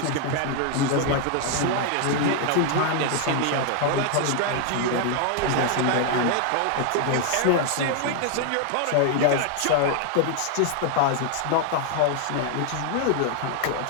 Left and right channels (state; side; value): different; both; correlation 0.00